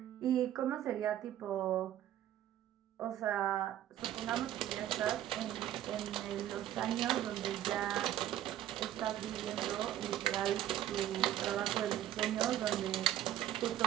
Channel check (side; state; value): left; quieter; 12.2 dB